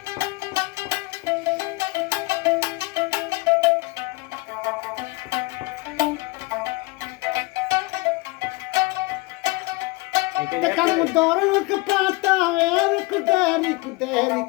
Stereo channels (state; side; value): quieter; right; 24.0 dB